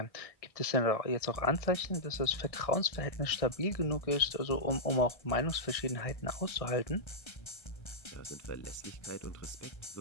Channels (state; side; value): late; right; 1.6 ms